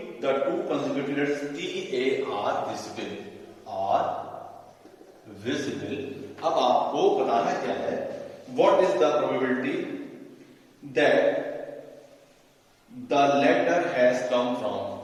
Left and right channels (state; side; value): identical; both; correlation 1.00